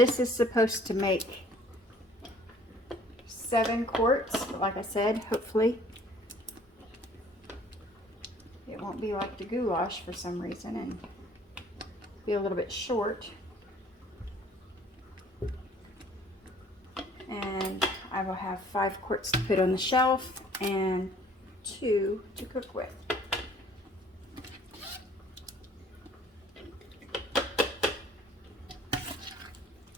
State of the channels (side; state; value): both; normal; correlation 0.56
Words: is supposed to make 7 quarts, but like I said, hopefully it won't be like the goulash for some reason and be a little bit short. And I will have 5 quarts to put on the shelf and 2 to cook with.